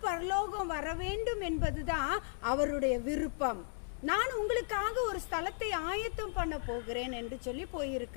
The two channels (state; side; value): silent; right; digital silence